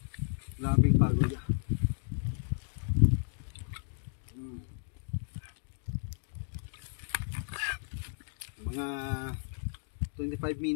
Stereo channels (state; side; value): silent; right; digital silence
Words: Labing pagod. Mga 25